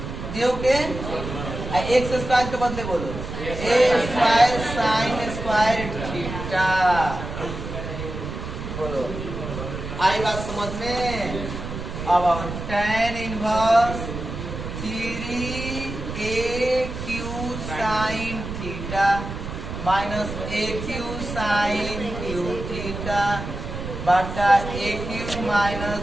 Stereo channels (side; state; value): right; noise; rumble, 7 dB below the sound